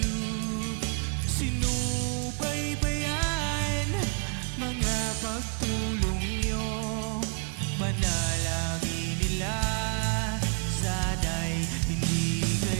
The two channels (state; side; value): quieter; left; 37.4 dB